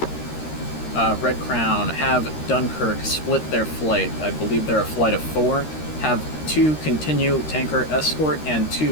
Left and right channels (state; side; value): late; right; 13 ms